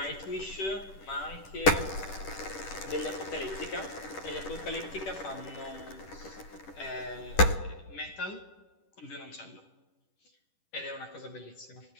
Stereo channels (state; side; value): late; right; 10 ms